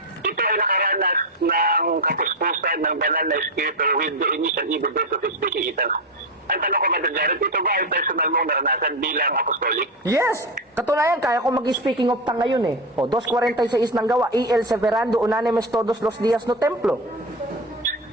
ito ay nakaranas ng kapuspusan ng banal na espiritu with the initial evidence of speaking in tongues. Ang tanong ko, Mother Jared, ito ba ay personal mong naranasan bilang apostolic? Yes! Katunayan, kaya ko mag-speaking of tongue ngayon eh. O, 2.46 ng gawa, el severando unanemes todos los días no templo.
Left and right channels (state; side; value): normal; both; correlation 0.16